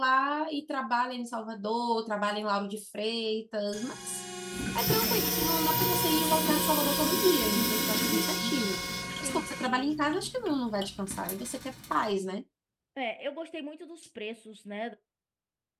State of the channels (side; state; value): both; identical; correlation 1.00